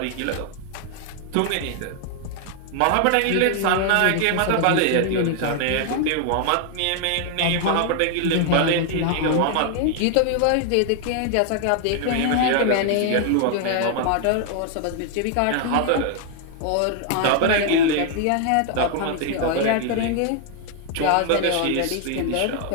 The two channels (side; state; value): both; different; correlation 0.00